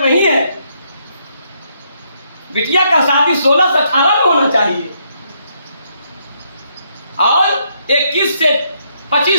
नहीं है। बिटिया का शादी 16 से 18 में होना चाहिए और 21 से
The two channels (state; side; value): inverted; both; correlation -0.74